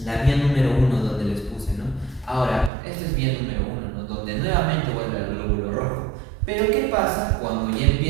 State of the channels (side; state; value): left; drops out; at 2.7 s